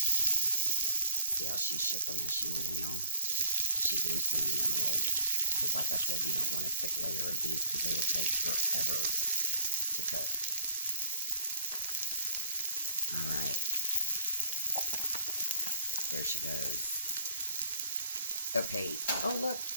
See how she shook them as she went in, y'all? She's loosening them a little bit. Because like I said, you don't want a thick layer of these because they will take forever to cook. Alright. There she goes. Okay. Oh, look.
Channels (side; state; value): both; inverted; correlation -0.48